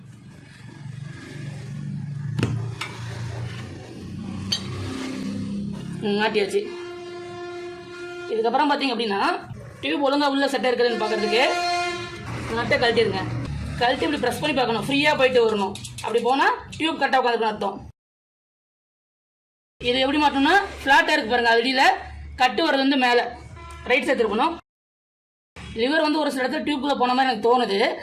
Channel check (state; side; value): identical; both; correlation 1.00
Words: மாட்டியாச்சு. இதுக்கப்புறம் பார்த்தீங்க அப்படின்னா டியூப் ஒழுங்காக உள்ள செட்டாக இருக்குதுன்னு பார்க்கறதுக்கு நட்டை கழட்டிடுங்க. கழட்டி இப்படி ப்ரெஸ் பண்ணி பார்க்கணும். ஃப்ரீயாக போயிட்டு வரணும். அப்படி போனால் டியூப் கரெக்டாக உட்காந்துருக்கணும் அர்த்தம். இது எப்படி மாட்டோம்னா ஃப்ளாட்டாக இருக்கு பாருங்க. அடியில் கட்டு வரது வந்து மேலே ரைட் சைடு இருக்கணும். லிவர் வந்து ஒரு சில இடத்துல டியூப்குள்ளே போன மாதிரி எனக்கு தோணுது.